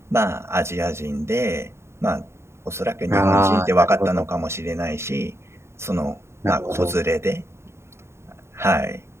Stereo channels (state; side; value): late; left; 0.13 ms